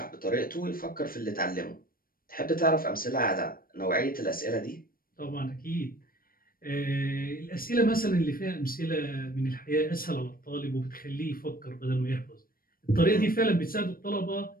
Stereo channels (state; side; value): late; right; 0.42 ms